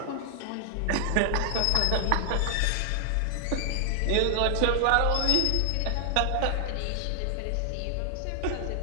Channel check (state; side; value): different; both; correlation 0.00